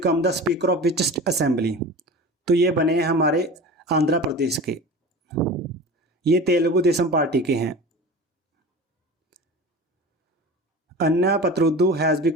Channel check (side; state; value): both; normal; correlation 0.35